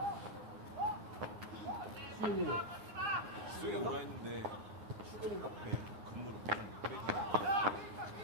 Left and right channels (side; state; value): left; late; 9.7 ms